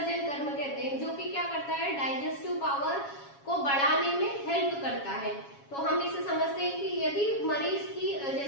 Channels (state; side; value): late; right; 7.2 ms